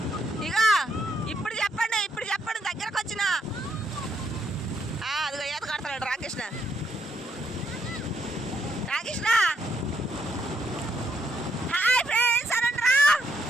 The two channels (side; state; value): both; normal; correlation 0.76